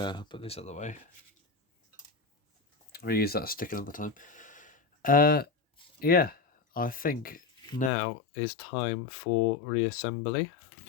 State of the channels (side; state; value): right; drops out; at 7.9 s